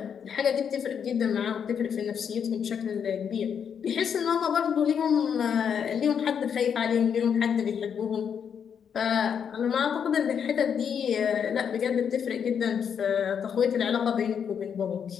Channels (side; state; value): right; quieter; 7.6 dB